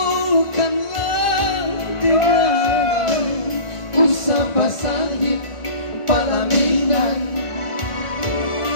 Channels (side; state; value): right; late; 1.4 ms